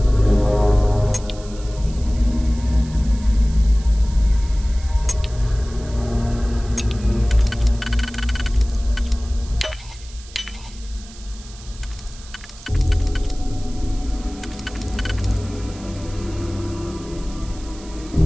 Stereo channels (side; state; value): right; noise; hiss, 20 dB below the sound